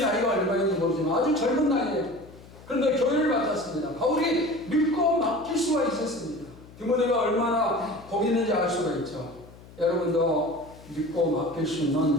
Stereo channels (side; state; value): left; noise; hum, 20 dB below the sound